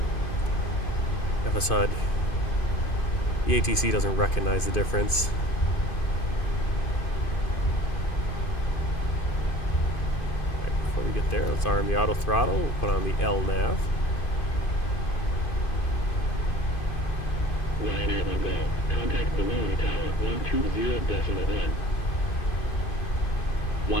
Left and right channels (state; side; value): late; right; 2.5 ms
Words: FS HUD. The ATC doesn't recognize the difference. Right, before we get there, let's arm the auto throttle. We'll put on the L nav. Ryanair 1 Golf. Contact Bologna Tower 120.1.